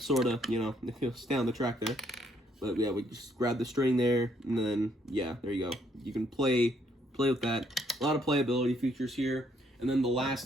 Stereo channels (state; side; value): normal; both; correlation 0.70